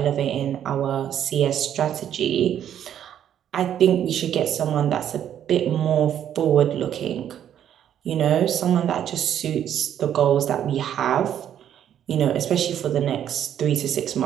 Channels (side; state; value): left; quieter; 10.1 dB